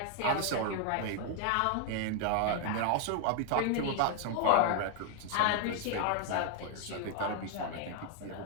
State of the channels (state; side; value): different; both; correlation 0.00